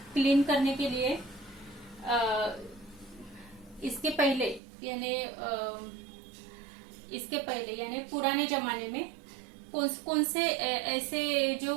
क्लीन करने के लिए इसके पहले यानी पुराने जमाने में कौन से ऐसे जो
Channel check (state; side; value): drops out; left; at 4.6 s